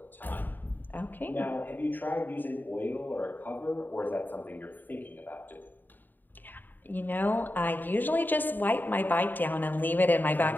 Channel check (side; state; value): right; late; 0.090 ms